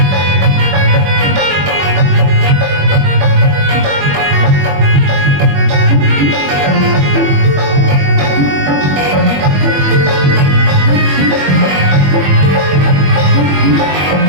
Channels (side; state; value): left; late; 21 ms